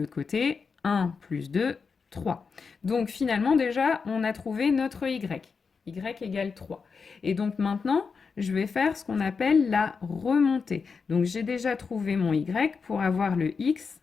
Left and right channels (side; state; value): right; quieter; 5.3 dB